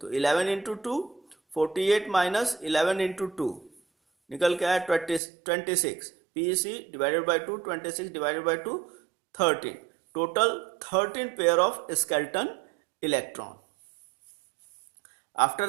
11 × 2, 48 माइनस 11 × 2 निकल के आया 26। PeC divided by 2, 26 divided by 2, 13। Total 13 pair of skeleton electron.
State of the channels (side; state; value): left; drops out; at 5.2 s